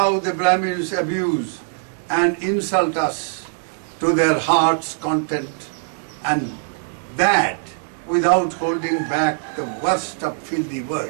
the Brahmins abuse and insult us to their heart's content, and that without holding back the worst of filthy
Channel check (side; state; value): left; silent; digital silence